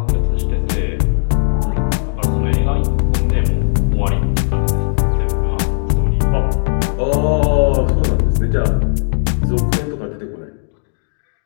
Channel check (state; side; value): silent; right; digital silence